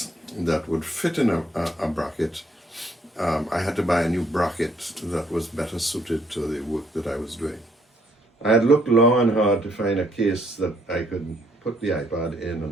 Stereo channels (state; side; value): normal; both; correlation 0.69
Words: that would fit in a bracket, I had to buy a new bracket that was better suited to the work that I was doing. I had looked long and hard to find a case that I could put the iPad in